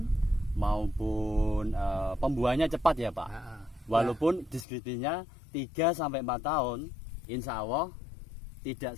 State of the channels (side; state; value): right; drops out; at 4.7 s